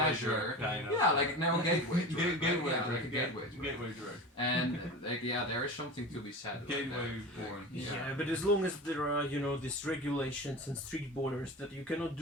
kind of. Yeah, like now gateway drug. Gateway Yeah, drug. like a gateway drug. Gateway drug. And like there is something to be said about Gateway that. porn. Yeah, but as long as there are, these regulations and strict borders that you cannot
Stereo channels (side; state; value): both; normal; correlation 0.31